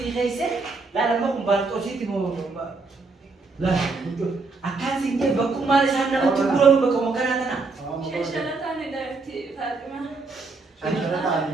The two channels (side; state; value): left; quieter; 3.9 dB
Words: kaise la lama kumbantu sih timo lah akan singje baku mari sana mau tiburan baku makan ana Shishala tane dari Fatima. sana tadi